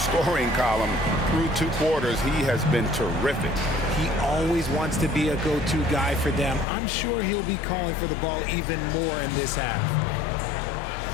column through 2 quarters? He has been terrific. He always wants to be a go-to guy for them. I'm sure he'll be calling for the ball even more in this half.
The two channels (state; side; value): drops out; right; at 6.7 s